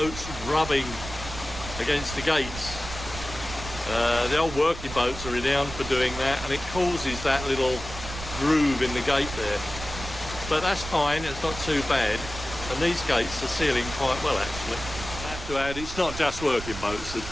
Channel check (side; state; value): right; noise; rumble, 10 dB below the sound